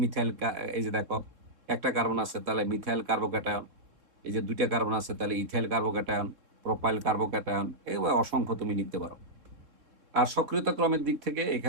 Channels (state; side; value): late; left; 3.6 ms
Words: মিথাইল, এই যে দেখো একটা কার্বন আছে তাহলে মিথাইল কার্বোক্যাটায়ন, এই যে দুইটা কার্বন আছে তাহলে ইথাইল কার্বোক্যাটায়ন, প্রোপাইল কার্বোক্যাটায়ন, এগুলো অসংখ্য তুমি লিখতে পারো। আর সক্রিয়তা ক্রমের দিক থেকে